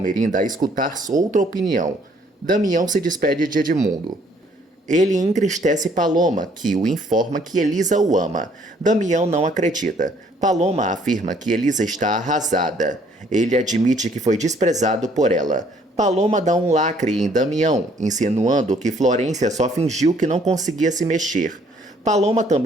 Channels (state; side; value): normal; both; correlation 0.63